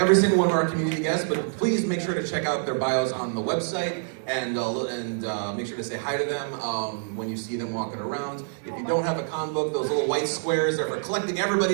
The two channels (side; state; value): left; silent; digital silence